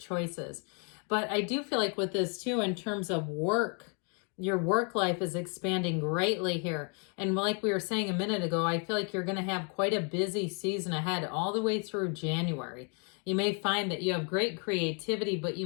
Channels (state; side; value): quieter; right; 38.4 dB